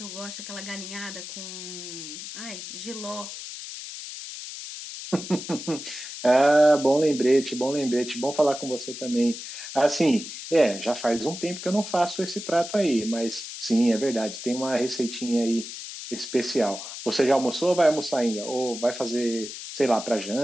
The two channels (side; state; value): left; noise; hiss, 10 dB below the sound